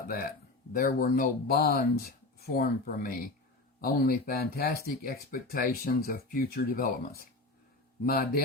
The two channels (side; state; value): right; quieter; 3.1 dB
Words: that. There were no bonds formed for me, only fantastic expectations of future developments. My